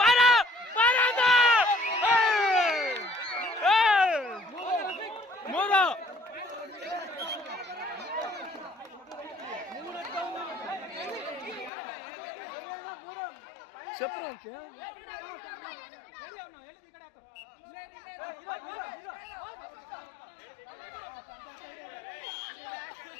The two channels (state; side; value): drops out; right; at 11.7 s